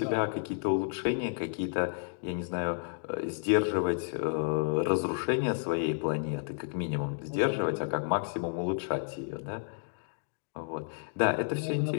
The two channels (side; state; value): right; silent; digital silence